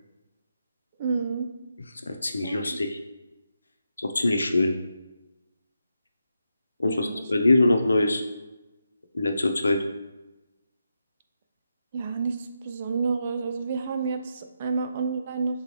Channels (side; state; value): both; inverted; correlation -0.85